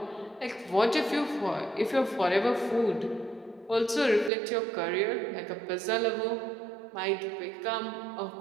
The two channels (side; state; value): left; drops out; at 4.3 s